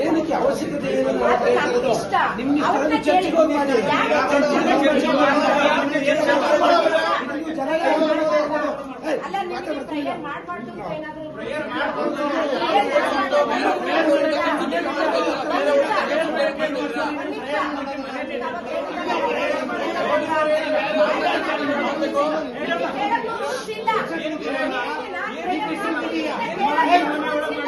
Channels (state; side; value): identical; both; correlation 1.00